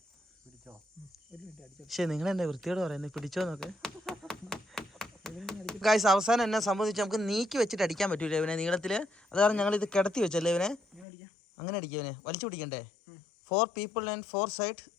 പക്ഷെ നിങ്ങൾ എന്നെ വൃത്തിയോട് പറയുന്നത് പിടിച്ചോ നോക്ക്. ഗൈസ് അവസാനം എന്നെ സംബന്ധിച്ച് നമുക്ക് നീക്കി വെച്ചിട്ട് അടിക്കാൻ പറ്റൂല ഇവനെ നീളത്തില്. അത് കാരണം ഞങ്ങൾ ഇത് കിടത്തി വെച്ചല്ലേ ഇവനെ. അങ്ങനെ അടിക്കുക ഇവനെ. വലിച്ചു പിടിക്കണ്ടേ? 4 people and 4 sides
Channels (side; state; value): right; drops out; at 11.1 s